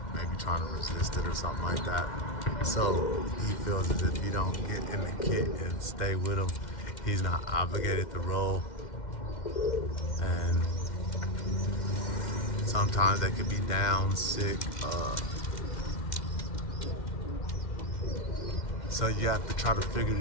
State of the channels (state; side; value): late; right; 2.1 ms